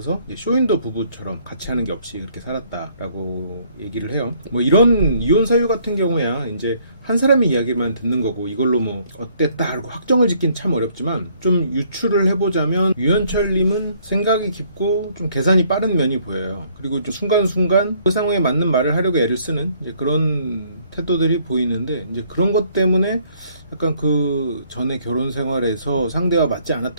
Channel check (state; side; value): inverted; both; correlation -0.64